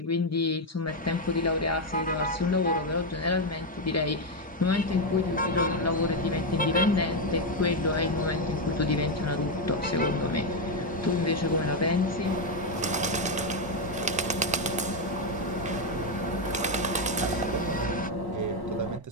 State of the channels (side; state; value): both; normal; correlation 0.04